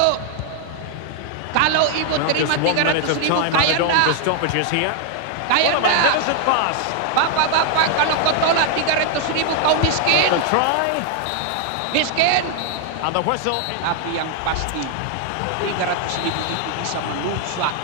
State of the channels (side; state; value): both; different; correlation 0.00